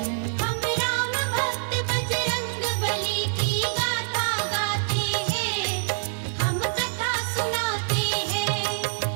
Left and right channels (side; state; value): left; silent; digital silence